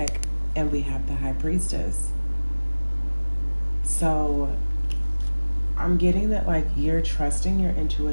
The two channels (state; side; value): inverted; both; correlation -1.00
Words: and we have the High Priestess. So I'm getting that like you're trusting your